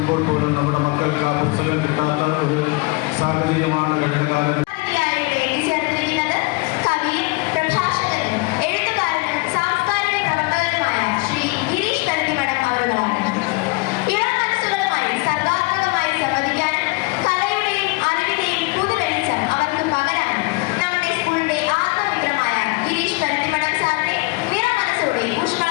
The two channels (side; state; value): right; quieter; 25.3 dB